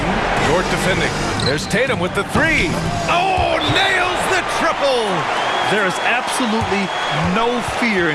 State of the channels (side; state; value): both; identical; correlation 1.00